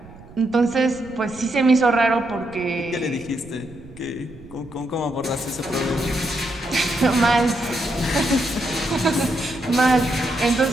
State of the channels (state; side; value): noise; right; rumble, 19 dB below the sound